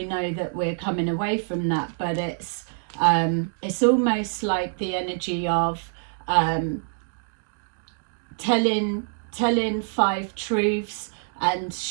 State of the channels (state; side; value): silent; left; digital silence